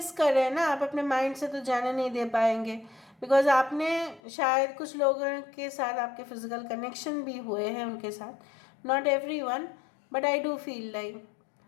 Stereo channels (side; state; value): right; drops out; at 4.2 s